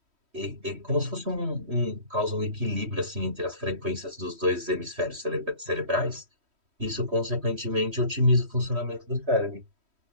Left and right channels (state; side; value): late; left; 3.1 ms